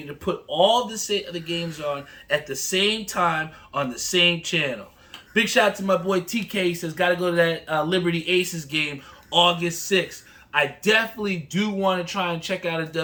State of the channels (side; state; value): both; identical; correlation 1.00